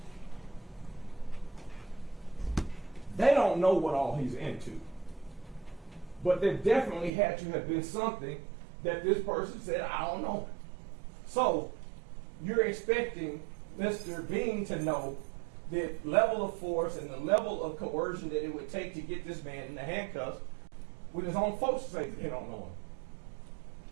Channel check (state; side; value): drops out; left; at 7.1 s